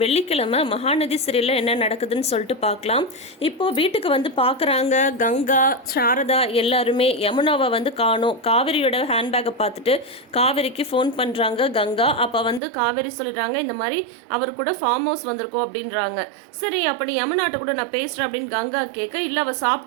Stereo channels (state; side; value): drops out; left; at 12.6 s